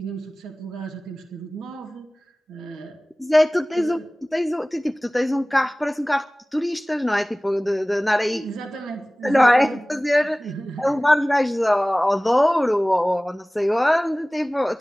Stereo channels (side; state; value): both; normal; correlation 0.98